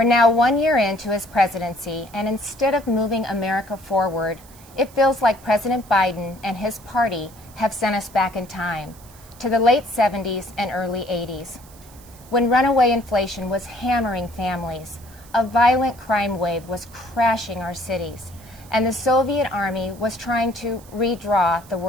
now 1 year into his presidency, and instead of moving America forward, it feels like President Biden and his party have sent us back in time to the late 70s and early 80s, when runaway inflation was hammering families, a violent crime wave was crashing our cities, and the Soviet Army was trying to redraw the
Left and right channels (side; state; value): right; noise; hiss, 23 dB below the sound